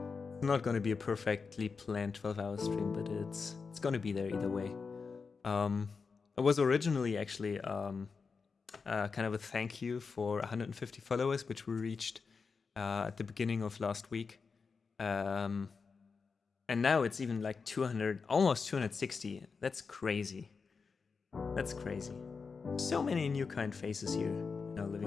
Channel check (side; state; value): right; quieter; 5.0 dB